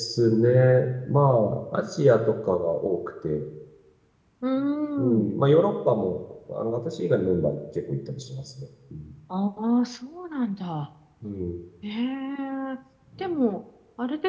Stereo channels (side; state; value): both; identical; correlation 1.00